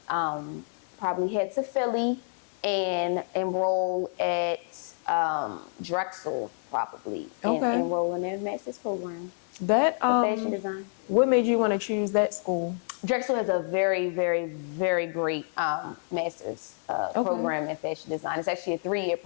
probably head to Philly and enroll at Drexel probably, and enroll in their master's program. That fashion design. What made you want to choose that school? Drexel has a very, very, very great master's program in fashion design. It's actually a 3-year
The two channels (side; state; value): right; silent; digital silence